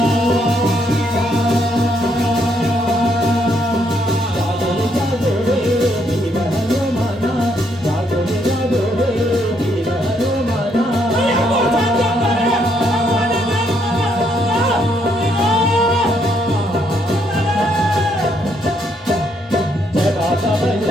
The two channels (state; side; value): normal; both; correlation 0.73